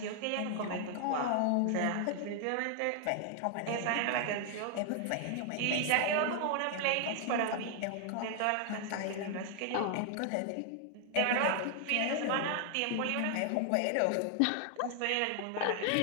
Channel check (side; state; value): both; different; correlation 0.00